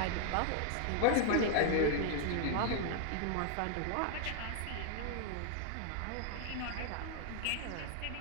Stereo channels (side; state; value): both; different; correlation 0.00